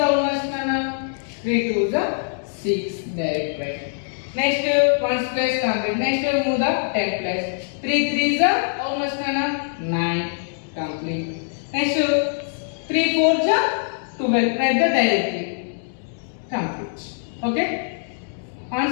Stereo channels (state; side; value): silent; right; digital silence